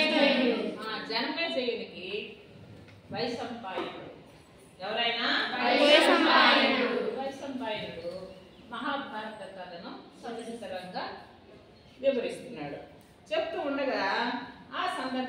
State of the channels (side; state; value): both; identical; correlation 1.00